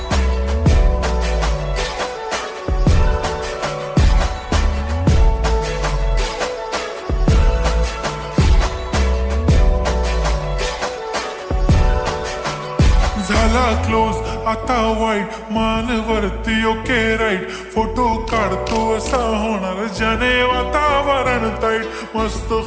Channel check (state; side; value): identical; both; correlation 1.00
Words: झाला क्लोज आता वाईट, मानवरती ओके राईट. फोटो काढतो असा होणार ज्याने वातावरण ताईट. मस्त